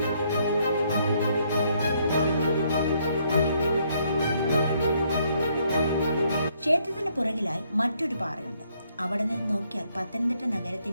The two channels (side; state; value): both; inverted; correlation -0.70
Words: ക്ഷേത്രത്തിന് പുറകിലായി മറ്റൊരു പാറയുണ്ട്. അവിടെ നിന്ന് നോക്കിയാൽ പത്തനംതിട്ട